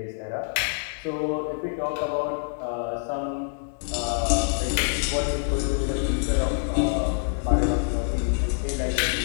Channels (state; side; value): silent; right; digital silence